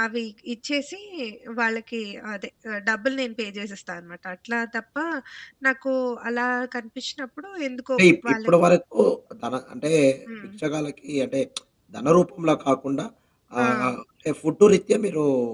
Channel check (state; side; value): identical; both; correlation 1.00